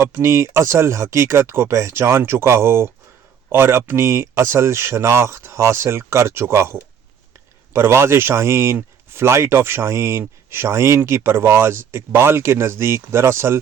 اصل حقیقت کو پہچان چکا ہو اور اپنی اصل شناخت حاصل کر چکا ہو۔ پرواز شاہین، فلائٹ آف شاہین، شاہین کی پرواز اقبال کے نزدیک دراصل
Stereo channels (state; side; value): quieter; left; 7.9 dB